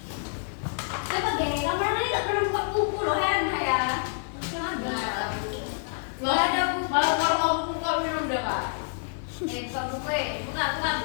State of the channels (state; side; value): silent; right; digital silence